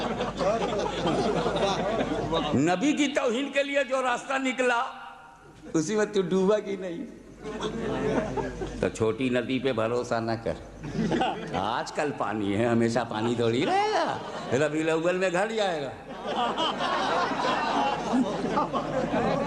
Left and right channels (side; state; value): both; identical; correlation 1.00